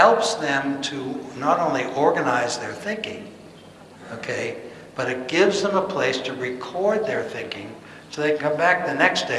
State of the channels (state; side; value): identical; both; correlation 1.00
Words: them to not only organize their thinking, okay, but it gives them a place to record their thinking so they can come back the next